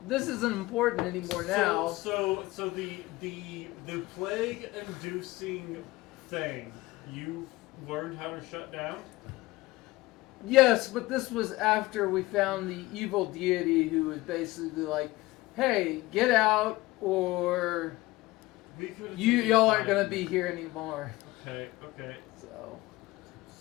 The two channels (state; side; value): quieter; right; 19.5 dB